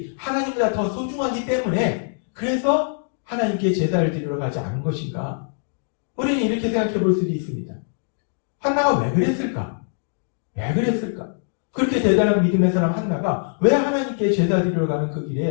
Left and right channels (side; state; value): right; silent; digital silence